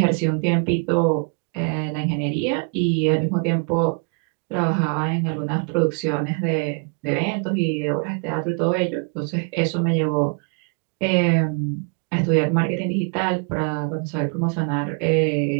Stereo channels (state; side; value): quieter; left; 38.6 dB